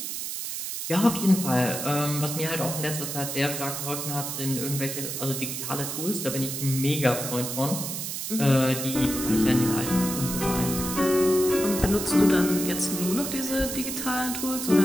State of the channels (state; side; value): noise; right; hiss, 5 dB below the sound